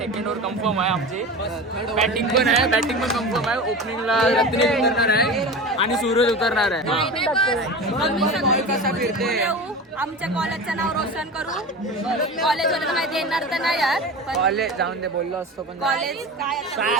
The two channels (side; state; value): both; normal; correlation 0.30